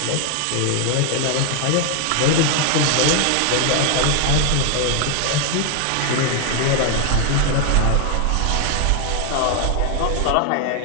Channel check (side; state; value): both; different; correlation 0.00